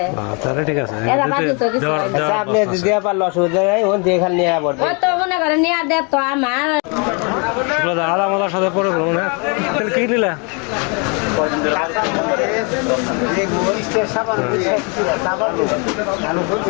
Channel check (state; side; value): quieter; right; 33.9 dB